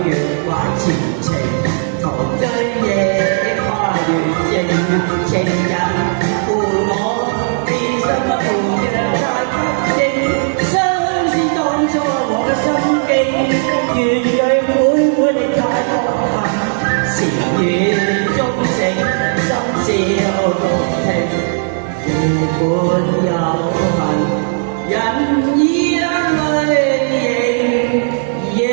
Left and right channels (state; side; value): silent; left; 66 dB below the other